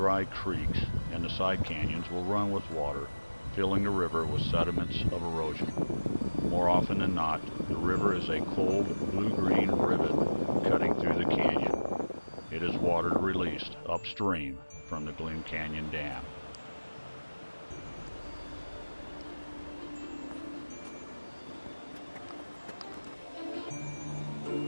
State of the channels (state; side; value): inverted; both; correlation -1.00